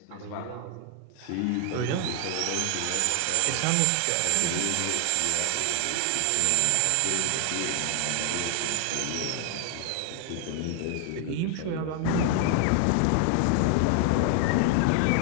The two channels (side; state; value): both; different; correlation 0.00